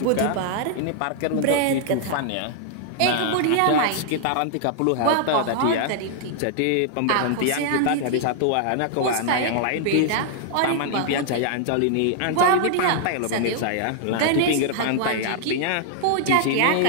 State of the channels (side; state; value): both; different; correlation -0.01